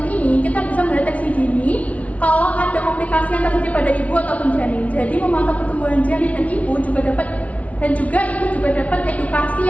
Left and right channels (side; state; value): right; late; 0.067 ms